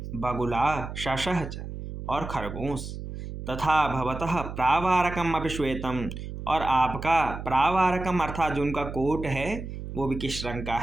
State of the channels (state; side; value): noise; right; hum, 8 dB below the sound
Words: बगुला, शशः च, और खरगोश, तथा भवतः प्रावारकम अपि श्वेतम, और आपका प्रावारकम अर्थात जो उनका कोट है वो भी किस रंग का